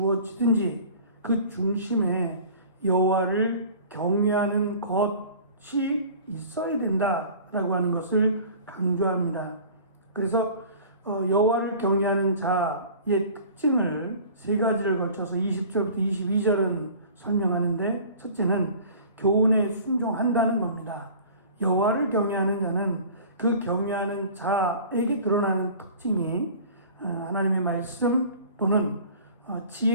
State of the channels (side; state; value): both; inverted; correlation -0.43